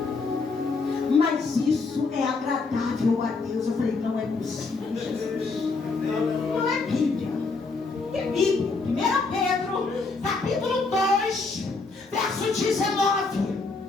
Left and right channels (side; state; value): right; quieter; 4.0 dB